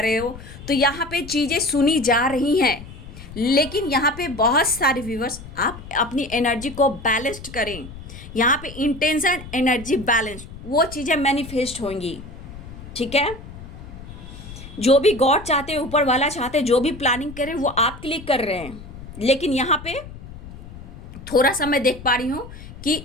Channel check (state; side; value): noise; left; rumble, 14 dB below the sound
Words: हो, तो यहाँ पे चीज़ें सुनी जा रही हैं। लेकिन यहाँ पे बहुत सारे व्यूवर्स आप अपनी एनर्जी को बैलेंस्ड करें, यहाँ पे इंटेंशन एनर्जी बैलेंस, वो चीज़ें मैनिफेस्ट होंगी, ठीक है। जो भी गॉड चाहते हैं, ऊपर वाला चाहते हैं, जो भी प्लानिंग करें वो आपके लिए कर रहे हैं। लेकिन यहाँ पे थोड़ा सा मैं देख पा रही हूँ कि